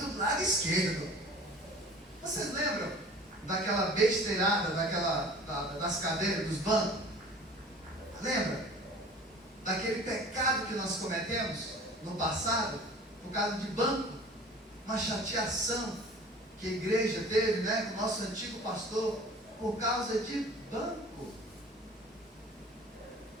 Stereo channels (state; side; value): normal; both; correlation 0.45